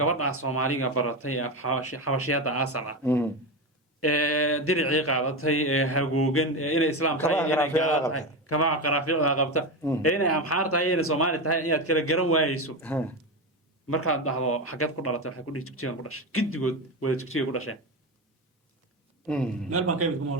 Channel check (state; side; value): normal; both; correlation 0.17